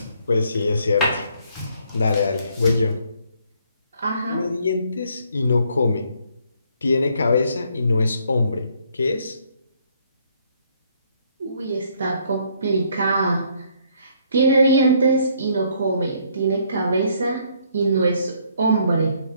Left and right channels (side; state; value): both; inverted; correlation -0.67